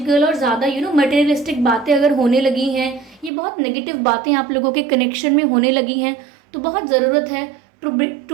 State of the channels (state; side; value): drops out; left; at 3.3 s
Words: और ज़्यादा मटेरियलिस्टिक बातें अगर होने लगी हैं, ये बहुत नेगेटिव बातें आप लोगों के कनेक्शन में होने लगी हैं, तो बहुत ज़रूरत है